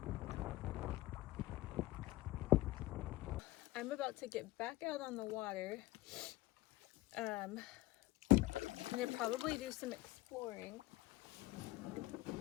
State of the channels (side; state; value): right; quieter; 17.9 dB